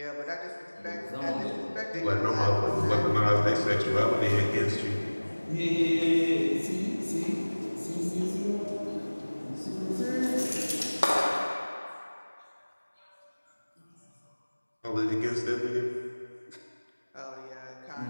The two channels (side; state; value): both; inverted; correlation -1.00